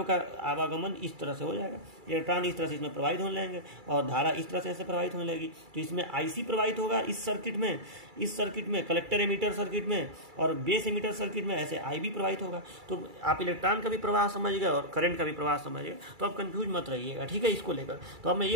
का आवागमन इस तरह से हो जाएगा, इलेक्ट्रॉन इस तरह से इसमें प्रवाहित होने लगेंगे और धारा इस तरह से ऐसे प्रवाहित होने लगेगी। तो इसमें आईसी प्रवाहित होगा इस सर्किट में कलेक्टर एमीटर सर्किट में, और बेस एमीटर सर्किट में ऐसे आईबी प्रवाहित होगा। तो आप इलेक्ट्रॉन का भी प्रवाह समझ गए और करंट का भी प्रवाह समझ गए, तो आप कंफ्यूज मत रहिएगा, ठीक है, इसको लेकर। तो अब मैं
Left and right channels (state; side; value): late; left; 2.3 ms